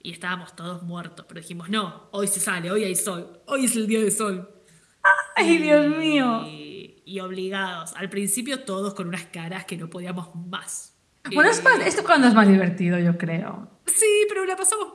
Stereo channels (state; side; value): identical; both; correlation 1.00